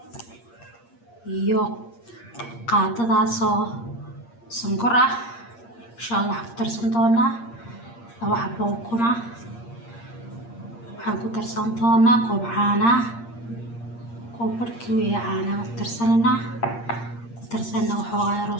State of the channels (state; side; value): late; right; 8.6 ms